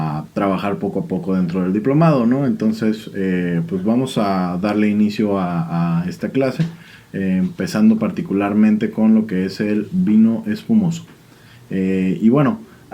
trabajar poco a poco dentro del diplomado, ¿no? Entonces, pues vamos a darle inicio a esta clase, empezando particularmente con lo que es el vino espumoso. Y bueno,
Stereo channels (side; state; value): both; identical; correlation 1.00